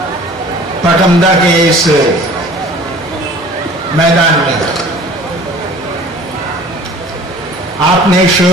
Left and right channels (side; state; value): both; normal; correlation 0.47